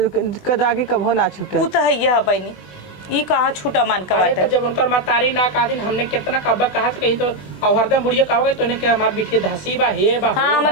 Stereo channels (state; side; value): late; right; 20 ms